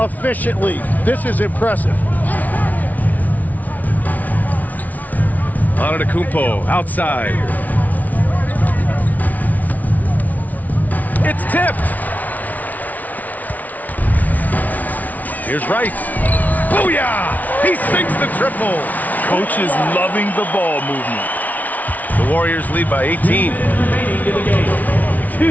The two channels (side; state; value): right; late; 0.075 ms